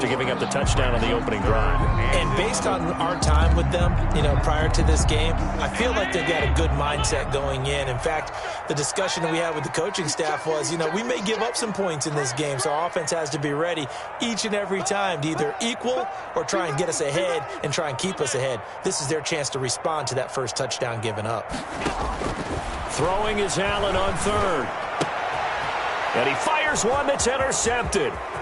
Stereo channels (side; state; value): both; identical; correlation 1.00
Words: giving up the touchdown on the opening drive. And based on our time with them, prior to this game, I feel like they've got a good mindset going in. In fact, the discussion that we had with the coaching staff was, we may give up some points in this game, so our offense has to be ready each and every time to either equal or try and get us ahead and try and keep us ahead. This is their chance to respond to that first touchdown given up. Throwing is Allen on 3rd. And he fires one that's intercepted.